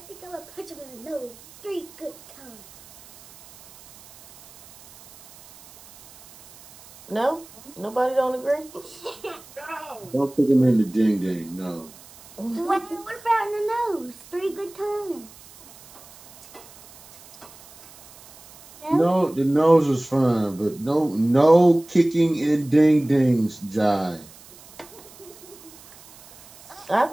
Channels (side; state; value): right; noise; hiss, 22 dB below the sound